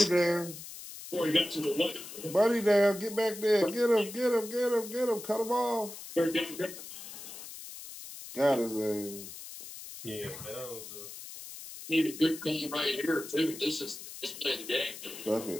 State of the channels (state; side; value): noise; left; hiss, 12 dB below the sound